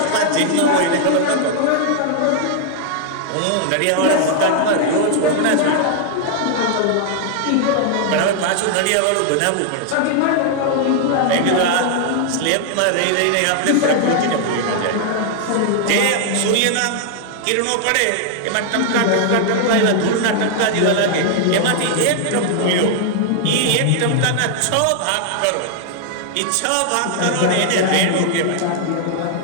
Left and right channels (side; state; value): both; different; correlation 0.00